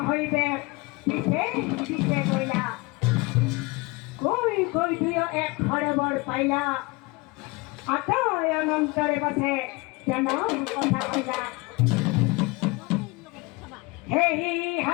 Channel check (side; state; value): right; quieter; 24.8 dB